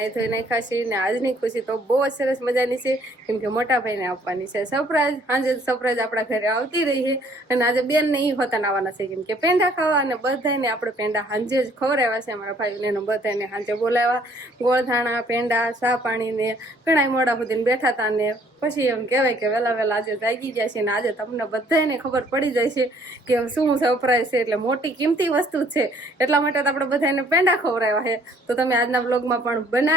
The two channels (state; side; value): normal; both; correlation 0.61